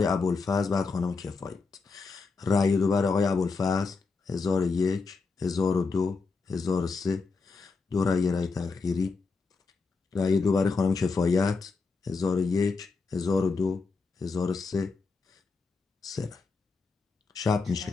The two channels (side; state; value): right; quieter; 4.3 dB